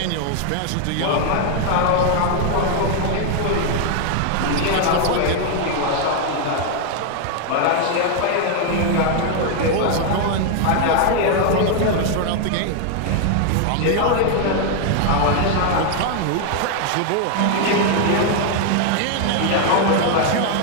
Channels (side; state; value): both; different; correlation 0.00